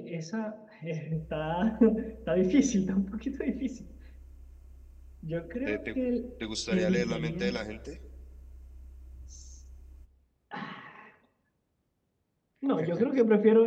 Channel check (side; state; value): both; identical; correlation 1.00